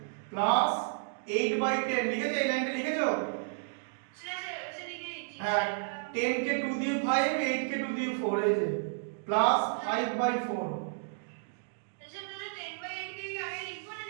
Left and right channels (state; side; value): silent; left; digital silence